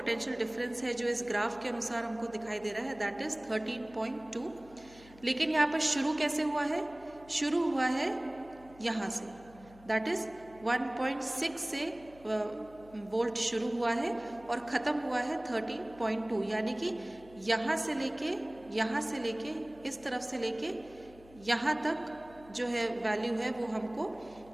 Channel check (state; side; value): noise; left; hum, 23 dB below the sound